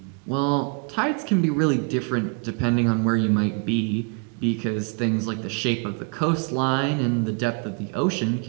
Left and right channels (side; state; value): left; quieter; 36.6 dB